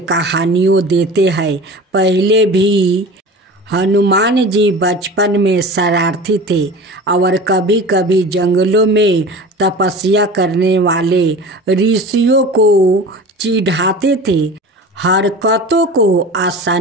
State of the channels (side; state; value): both; normal; correlation 0.36